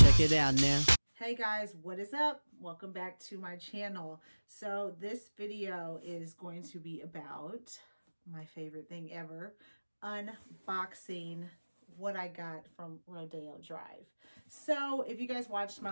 Check it out now. Hey guys, what is up? Welcome back to my channel. So this video is going to be about my favorite thing ever, unboxing what I got from Rodeo Drive. So if you guys watched my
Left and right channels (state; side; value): inverted; both; correlation -1.00